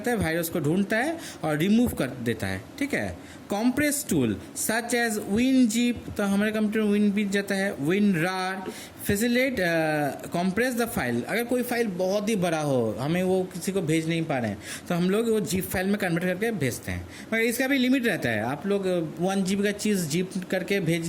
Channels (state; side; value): identical; both; correlation 1.00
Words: है, वायरस को ढूंढता है और रिमूव कर देता है, ठीक है। Compress tool such as WinZip, तो हमारे कंप्यूटर WinZip जाता है, WinRAR facilitate compress the file. अगर कोई फाइल बहुत ही बड़ा हो, हमें वो किसी को भेज नहीं पा रहे हैं, तो हम लोग वो जीप फाइल में कन्वर्ट करके भेजते हैं। मगर इसका भी लिमिट रहता है, आप लोग 1 GB का चीज़ जीप करके